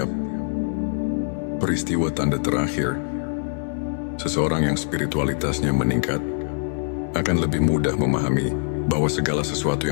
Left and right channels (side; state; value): right; silent; 63 dB below the other